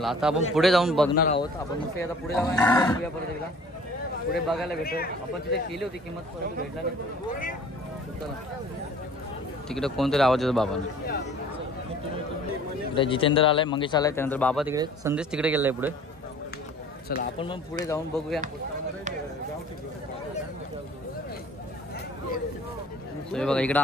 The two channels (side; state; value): both; normal; correlation 0.50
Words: आता आपण पुढे जाऊन बघणार आहोत. आपण मस्त आता पुढे जाऊया परत एकदा पुढे बघायला भेटतो. आपण तिथे केली होती किंमत, परंतु भेटला नाही. तिकडे कोणतरी आवाज येतो बाबाने. इकडे जितेंद्र आलाय, मंगेश आलाय, त्यानंतर बाबा तिकडे, संदेश तिकडे गेलाय पुढे. चला आपण मग पुढे जाऊन बघूया. बघा इकडं